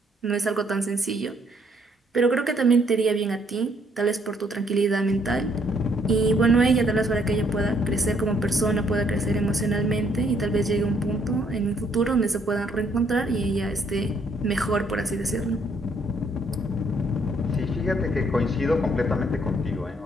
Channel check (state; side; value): normal; both; correlation 0.68